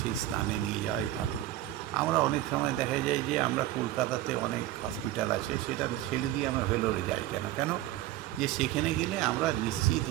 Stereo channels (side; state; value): left; quieter; 14.6 dB